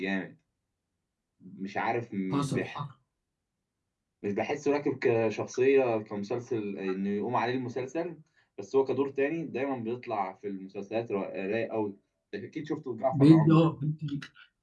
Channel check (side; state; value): both; identical; correlation 1.00